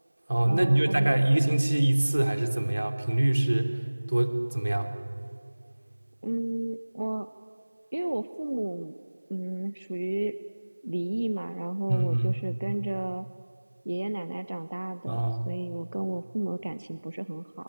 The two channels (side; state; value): both; inverted; correlation -1.00